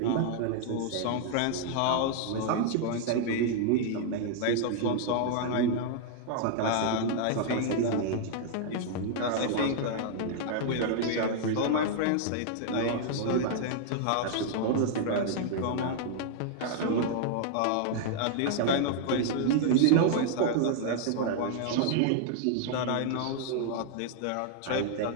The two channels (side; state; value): both; different; correlation -0.01